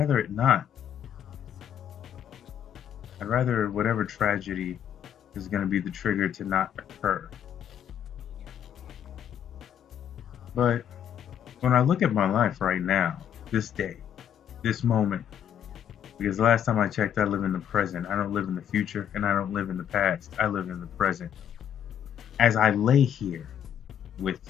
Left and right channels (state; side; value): quieter; right; 9.4 dB